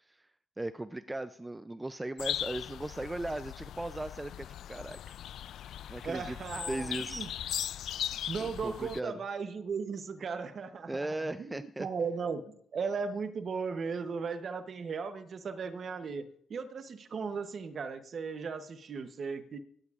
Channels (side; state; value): both; normal; correlation 0.79